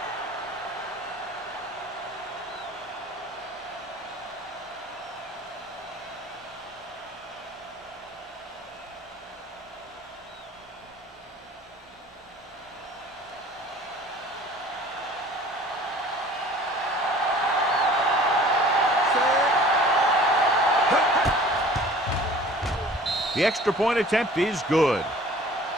The extra point attempt is good.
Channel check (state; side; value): normal; both; correlation 0.47